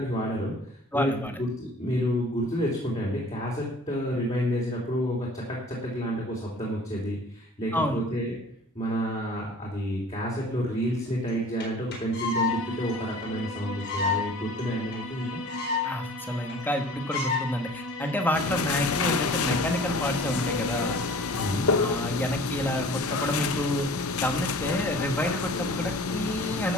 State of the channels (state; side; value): normal; both; correlation 0.46